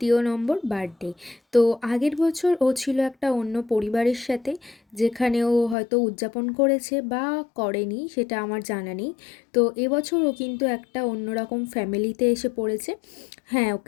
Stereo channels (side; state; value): right; drops out; at 5.8 s